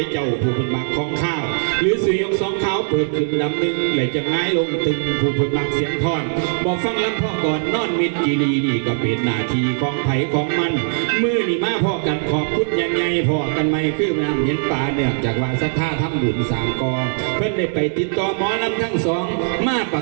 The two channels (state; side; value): silent; left; digital silence